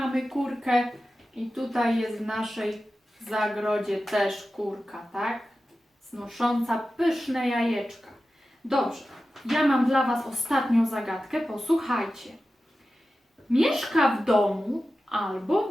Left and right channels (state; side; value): normal; both; correlation 0.94